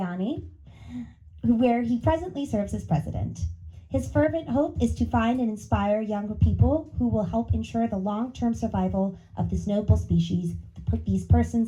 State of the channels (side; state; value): both; identical; correlation 1.00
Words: where he presently serves as president. His fervent hope is to find and inspire younger people who will help ensure the long-term survival of this noble species, these